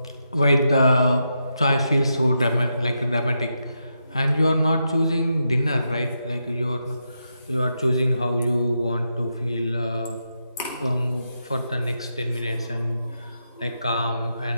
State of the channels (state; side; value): inverted; both; correlation -0.84